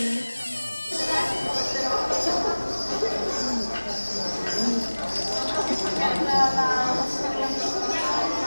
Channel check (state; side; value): inverted; both; correlation -1.00